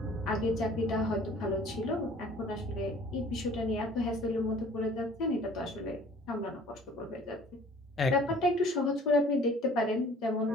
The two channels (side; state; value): both; normal; correlation 0.51